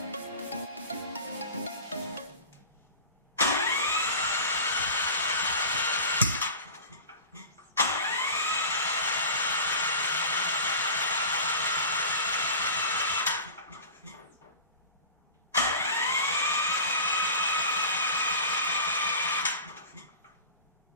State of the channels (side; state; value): both; inverted; correlation -0.35